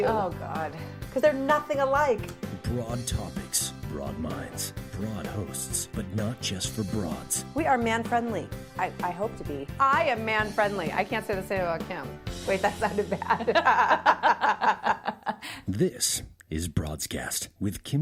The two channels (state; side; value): identical; both; correlation 1.00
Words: Oh, God. Because they're nothing alike. Broad topics, broad minds, broad hosts, but not just for broads. We are man-friendly. I hope to be. I am man-friendly. I can't say the same about Kim. Wait, that sounded bad. This is Broadscast with